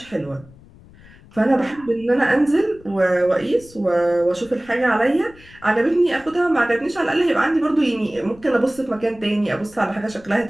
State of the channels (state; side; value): noise; left; rumble, 24 dB below the sound